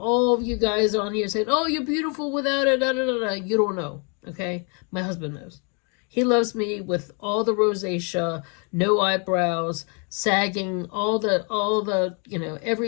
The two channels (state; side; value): quieter; right; 36.7 dB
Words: of you guys on here saying, oh, you're beautiful without it, da, da, da, da. You don't know, okay? My husband knows. He loves me with all the rosacea, no eyebrows, sagging, all the you know,